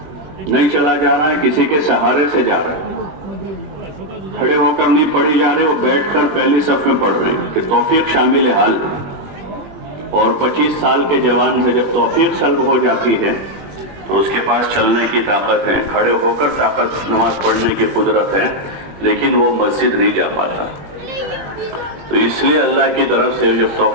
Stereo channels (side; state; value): left; late; 20 ms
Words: نہیں چلا جا رہا ہے کسی کے سہارے سے جا رہا ہے، کھڑے ہو کر نہیں پڑھی جا رہے، وہ بیٹھ کر پہلی صف میں پڑھ رہے ہیں کہ توفیق شامل حال ہے۔ اور 25 سال کے جوان سے جب توفیق سلب ہو جاتی ہے تو اس کے پاس چلنے کی طاقت ہے، کھڑے ہو کر طاقت نماز پڑھنے کی قدرت ہے، لیکن وہ مسجد نہیں جا پاتا۔ تو اس لیے اللہ کی طرف سے جب